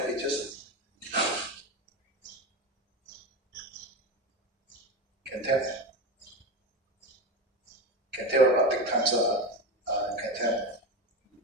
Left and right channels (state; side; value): normal; both; correlation 0.20